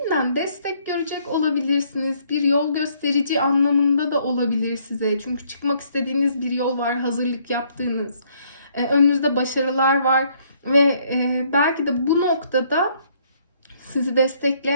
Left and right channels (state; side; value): inverted; both; correlation -0.66